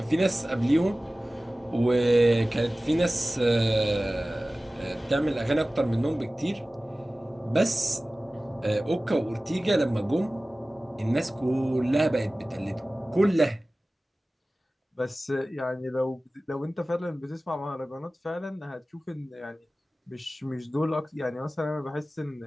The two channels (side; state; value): both; normal; correlation 0.97